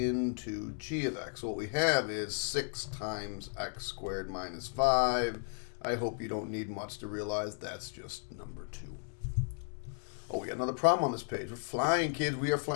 g of x. So what we have is 6 times x squared minus 5. I hope you don't need much to realize that's just number 2. Oh, we got another problem on this page. We're flying, kids. We are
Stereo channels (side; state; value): right; silent; 55 dB below the other